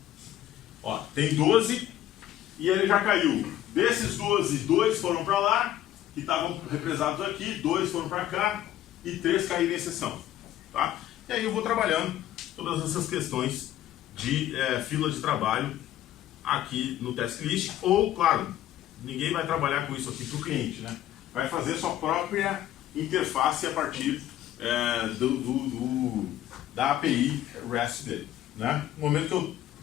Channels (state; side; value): quieter; right; 12.8 dB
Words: Ó, tem 12 e ele já caiu. Desses 12, 2 foram para lá, que estavam represados aqui, 2 foram para cá e 3 caíram em exceção. Tá? E aí eu vou trabalhando todas essas questões de fila de trabalho aqui no task list, ou, claro, ninguém vai trabalhar com isso aqui para o cliente, né? Vai fazer sua própria interface a partir da API REST dele, né? No momento que eu